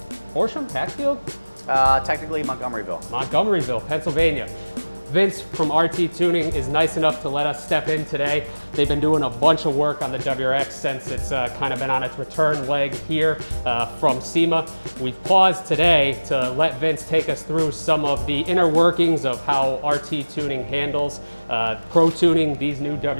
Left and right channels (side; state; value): both; inverted; correlation -1.00